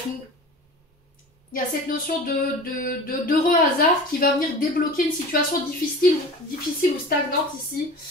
il y a cette notion d'heureux hasard qui va venir débloquer une situation difficile ou stagnante ici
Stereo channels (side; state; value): both; normal; correlation 0.37